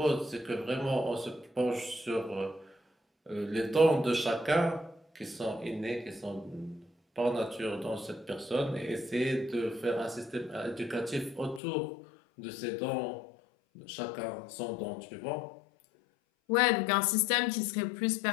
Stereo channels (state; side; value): drops out; right; at 11.6 s